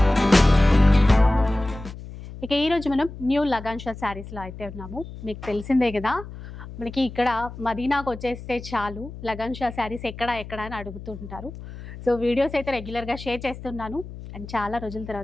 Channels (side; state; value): left; noise; hum, 13 dB below the sound